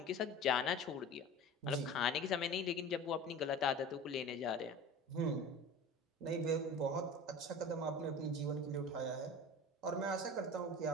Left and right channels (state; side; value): normal; both; correlation 0.36